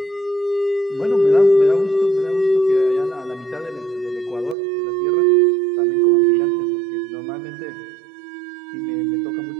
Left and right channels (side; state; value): left; drops out; at 4.5 s